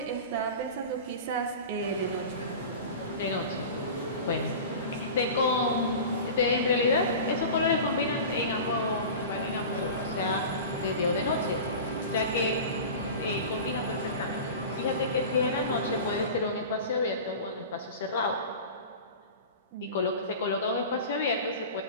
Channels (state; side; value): inverted; both; correlation -0.34